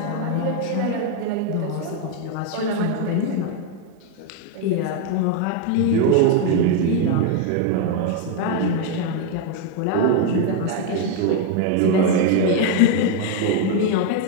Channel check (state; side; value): different; both; correlation 0.01